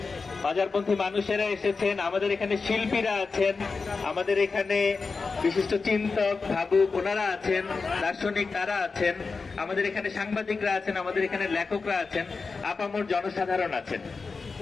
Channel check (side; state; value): right; quieter; 4.5 dB